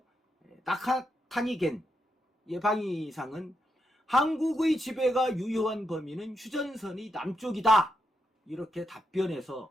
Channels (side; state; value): both; normal; correlation 0.83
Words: 나카타니겐 방위상은 한국의 지배가 유효한 범위는 휴전선의 남쪽이다. 이렇게